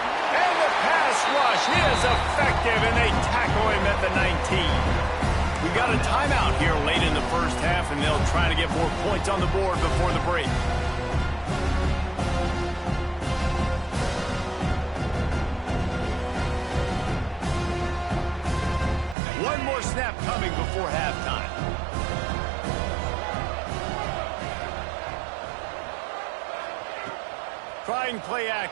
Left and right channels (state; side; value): drops out; left; at 19.2 s